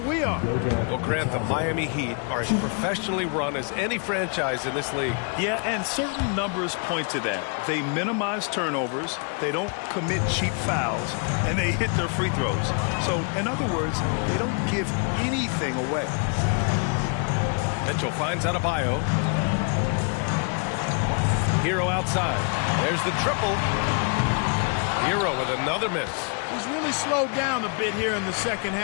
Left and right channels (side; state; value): right; quieter; 39.2 dB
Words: are. Well, Grant, the Miami Heat are as professionally run as any franchise in this league. Yeah, and certain numbers point to that. They minimize turnovers, they don't commit cheap fouls, and they hit their free throws. So, in other words, they don't give anything away. Mitchell finds Adebayo. Hero outside. There's the triple. Hero with another miss. He's really slowed down a bit here in the second